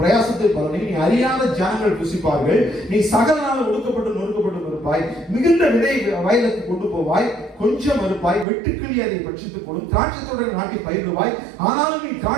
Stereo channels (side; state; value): left; drops out; at 8.5 s